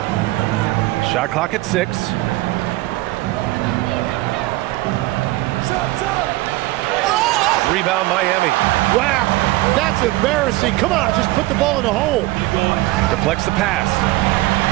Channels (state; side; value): quieter; left; 19.0 dB